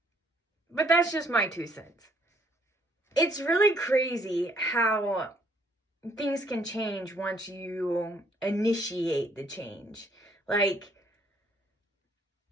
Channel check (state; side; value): normal; both; correlation 0.65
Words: But that's just my 2 cents. It's really crazy how things can change once you initiate the change.